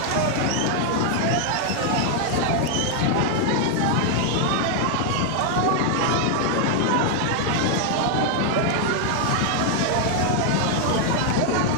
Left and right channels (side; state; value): both; different; correlation 0.00